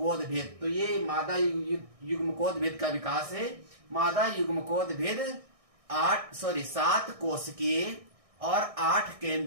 भेद। तो ये मादा युग्मकोद भेद का विकास है। मादा युग्मकोद भेद 7 कोशिकीय और 8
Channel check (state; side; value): late; left; 1.6 ms